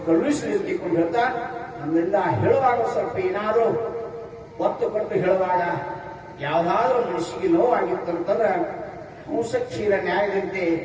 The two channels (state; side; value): identical; both; correlation 1.00